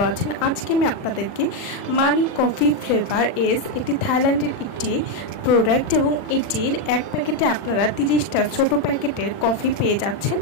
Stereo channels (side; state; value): right; late; 40 ms